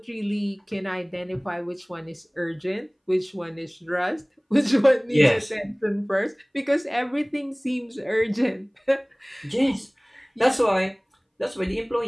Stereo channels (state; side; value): identical; both; correlation 1.00